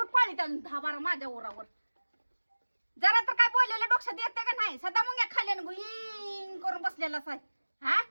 पाळीत अजून 10-12 माझ्या ओरावर जरा तर काय बोललेलं डोक्यात येते का नाही सदा मग या खाल्यानं गुईंग करून बसलेलाच आहे हा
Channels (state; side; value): inverted; both; correlation -1.00